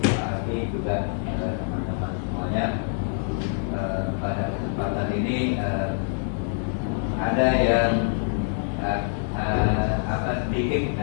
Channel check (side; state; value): right; silent; digital silence